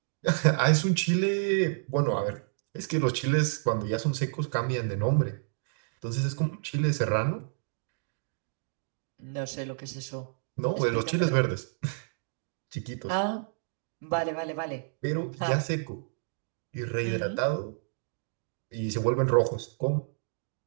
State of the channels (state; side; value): silent; left; digital silence